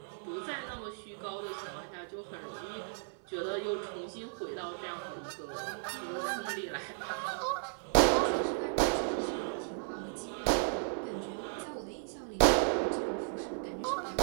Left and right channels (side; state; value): left; silent; 54 dB below the other